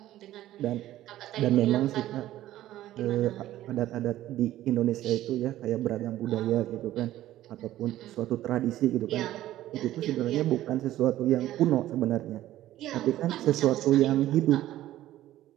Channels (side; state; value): left; quieter; 14.1 dB